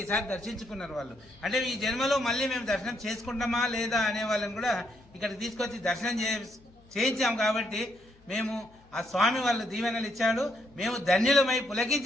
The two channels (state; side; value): noise; left; hum, 28 dB below the sound